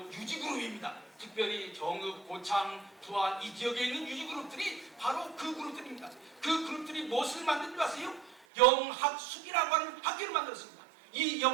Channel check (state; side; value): drops out; left; at 8.4 s